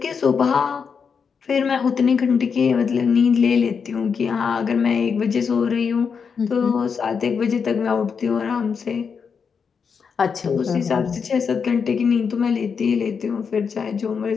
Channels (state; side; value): quieter; right; 6.1 dB